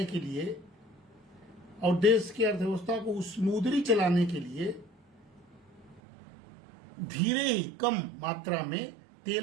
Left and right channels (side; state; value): left; drops out; at 6.0 s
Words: के लिए और देश की अर्थव्यवस्था को स्मूथली चलाने के लिए धीरे ही कम मात्रा में